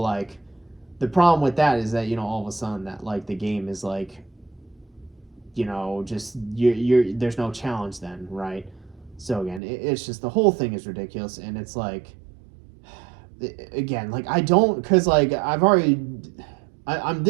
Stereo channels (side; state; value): left; drops out; at 9.6 s